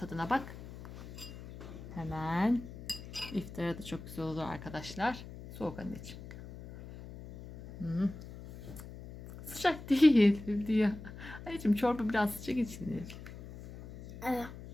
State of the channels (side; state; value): left; noise; hum, 13 dB below the sound